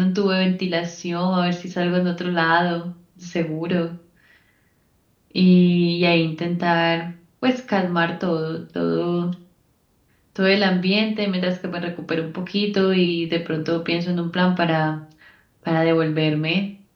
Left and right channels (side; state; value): both; identical; correlation 1.00